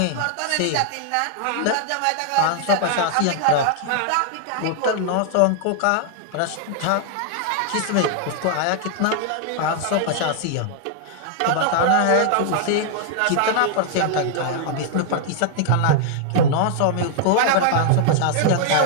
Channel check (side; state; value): both; different; correlation 0.00